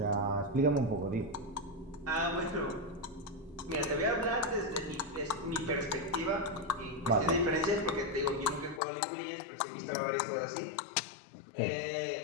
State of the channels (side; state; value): right; drops out; at 8.8 s